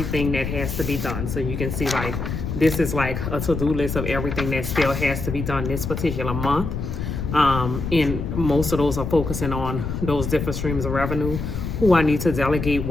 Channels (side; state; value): left; noise; rumble, 4 dB below the sound